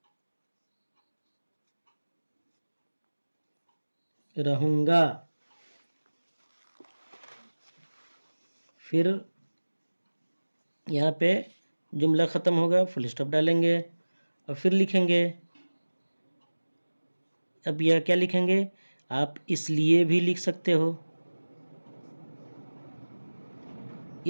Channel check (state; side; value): inverted; both; correlation -1.00